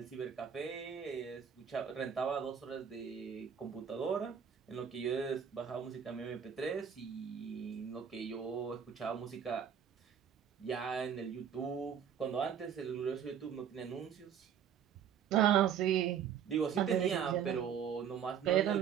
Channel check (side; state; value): left; quieter; 8.2 dB